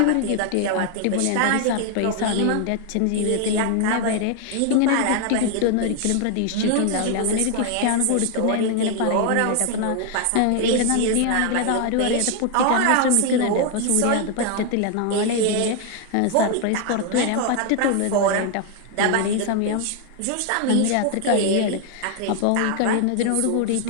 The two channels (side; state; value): both; different; correlation 0.00